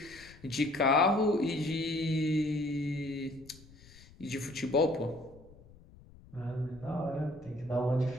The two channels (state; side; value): noise; left; rumble, 22 dB below the sound